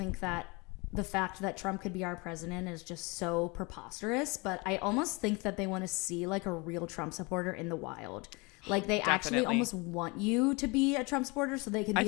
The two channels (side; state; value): right; quieter; 27.5 dB